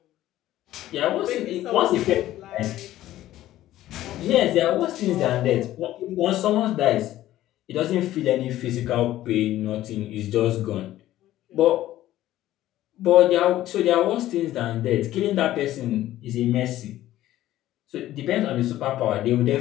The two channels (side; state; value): right; quieter; 14.2 dB